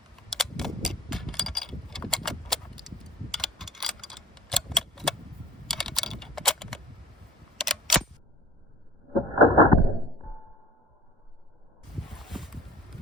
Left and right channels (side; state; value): both; normal; correlation 0.43